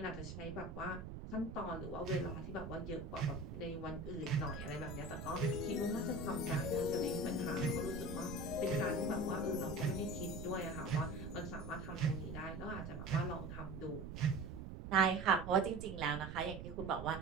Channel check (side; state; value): right; noise; rumble, 8 dB below the sound